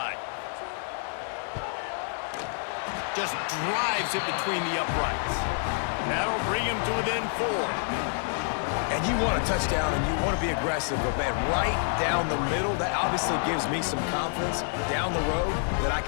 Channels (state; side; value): silent; right; 59 dB below the other